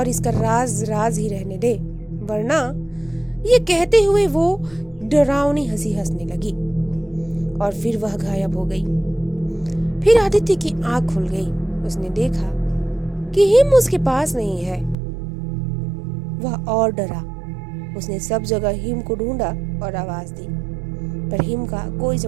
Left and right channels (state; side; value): drops out; left; at 15.0 s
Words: इसका राज राज ही रहने दे, वरना। ये कहते हुए वो डरावनी हंसी हंसने लगी और फिर वह गायब हो गई। फिर आदित्य की आंख खुल गई। उसने देखा कि हिम उसके पास नहीं है। वह और डरा। उसने सब जगह हिम को ढूंढा और आवाज दी, पर हिम का कोई